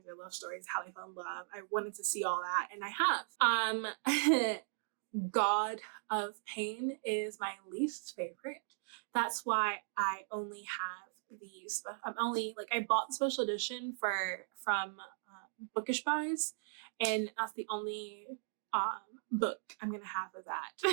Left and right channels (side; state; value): left; silent; digital silence